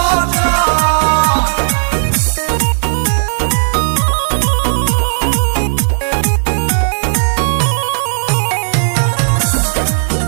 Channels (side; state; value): left; silent; digital silence